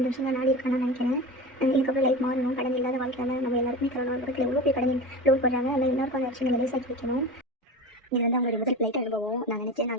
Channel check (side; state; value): both; normal; correlation 0.29